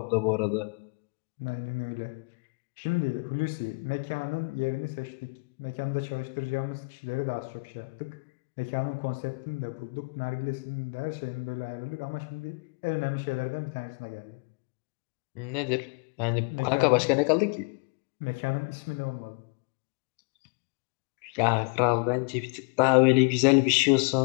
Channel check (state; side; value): quieter; right; 34.0 dB